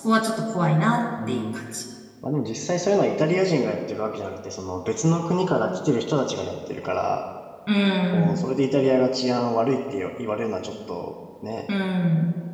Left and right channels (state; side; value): identical; both; correlation 1.00